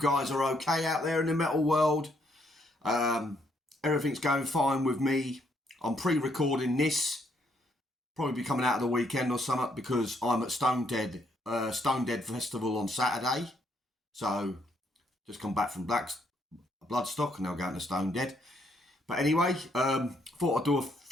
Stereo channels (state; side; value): normal; both; correlation 0.72